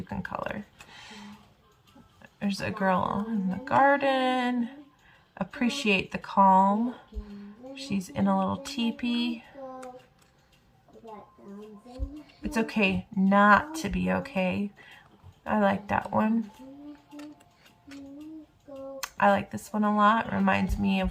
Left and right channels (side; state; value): both; identical; correlation 1.00